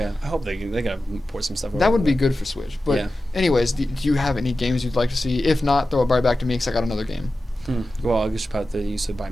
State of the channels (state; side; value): normal; both; correlation 0.94